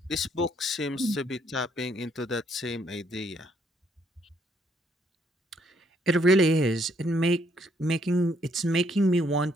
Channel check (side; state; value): both; normal; correlation 0.69